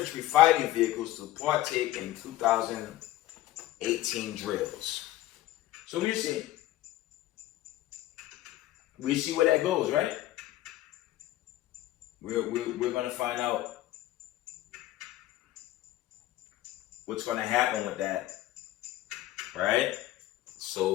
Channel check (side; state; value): right; quieter; 15.3 dB